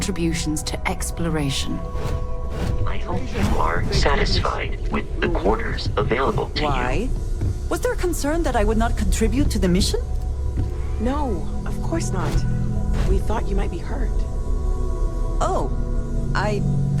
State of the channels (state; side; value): identical; both; correlation 1.00